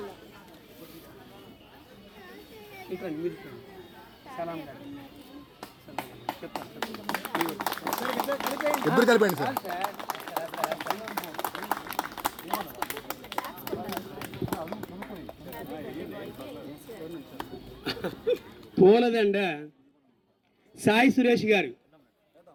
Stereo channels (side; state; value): both; identical; correlation 1.00